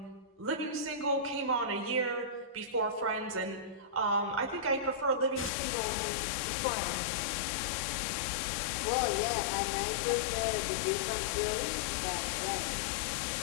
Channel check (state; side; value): drops out; right; at 5.5 s